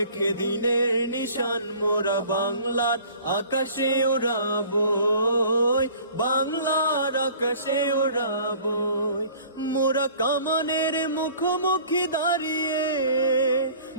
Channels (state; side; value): inverted; both; correlation -0.49